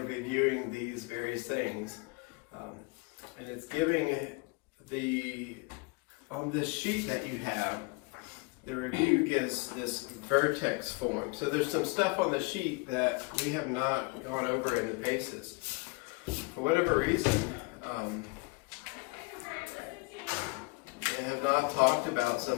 reviewing these various things. And it's giving on this sheet that you have, the review gives this vertex form. So there's some stuff on the sheet that we have not gone over in the basis. For whatever reason, they have not talked about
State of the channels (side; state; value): right; quieter; 27.8 dB